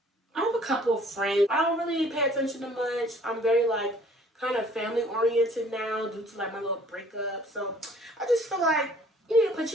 I have a couple of friends. I don't really pay attention to much. I'm very like kind of family oriented now due to like my little breakup. So I just feel like you need to put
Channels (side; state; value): both; normal; correlation 0.56